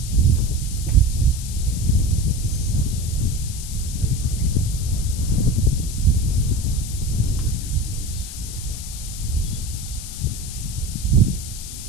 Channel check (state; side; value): noise; left; hiss, 10 dB below the sound